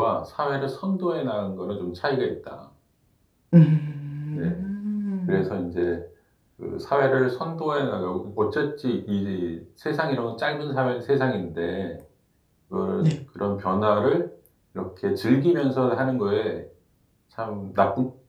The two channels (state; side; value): identical; both; correlation 1.00